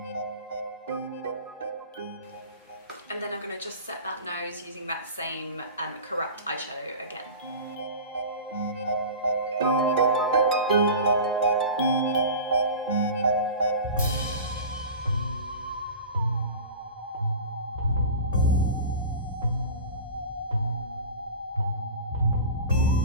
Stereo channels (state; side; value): inverted; both; correlation -0.35